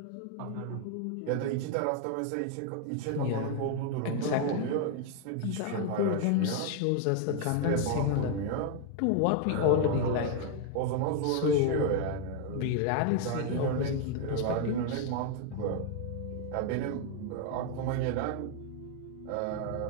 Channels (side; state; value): both; different; correlation 0.00